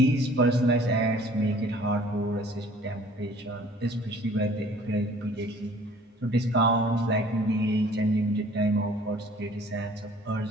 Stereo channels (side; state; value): both; normal; correlation 0.53